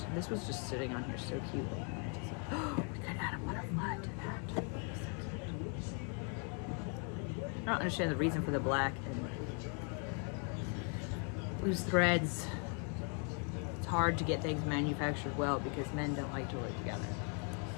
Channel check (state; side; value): quieter; right; 39.3 dB